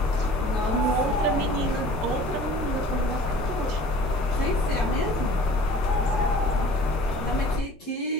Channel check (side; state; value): both; normal; correlation 0.47